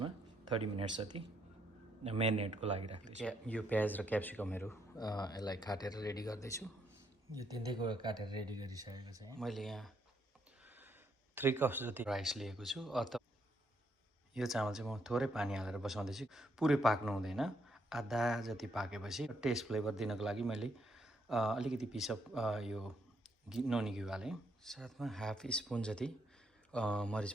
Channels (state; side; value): normal; both; correlation 0.75